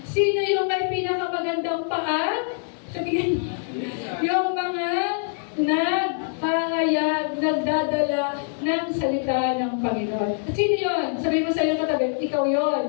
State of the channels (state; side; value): silent; right; digital silence